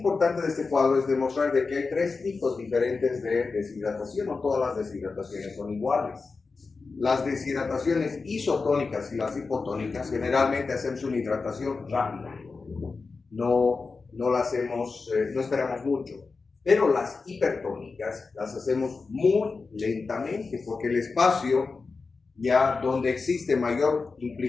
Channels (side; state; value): right; quieter; 4.3 dB